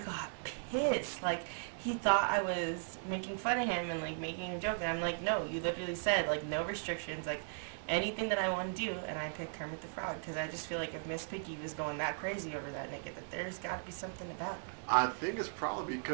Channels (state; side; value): silent; left; digital silence